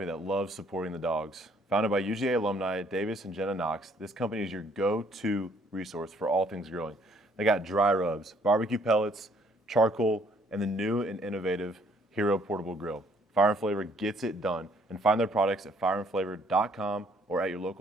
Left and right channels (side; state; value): both; normal; correlation 0.63